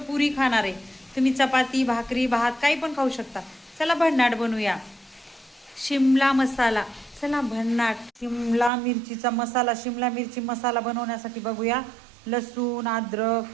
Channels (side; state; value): left; drops out; at 8.7 s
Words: पुरी खाणार आहे. तुम्ही चपाती भाकरी भात काही पण खाऊ शकता. चला भन्नाट बनवूया. शिमला मसाला. चला भन्नाट शिमला मिरचीचा मसाला. शिमला मिरची मसाला बनवण्यासाठी बघूया. लसूण, अद्रक,